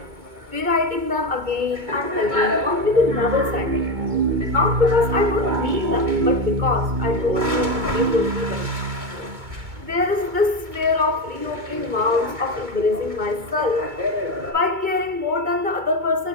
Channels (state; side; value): late; left; 2.2 ms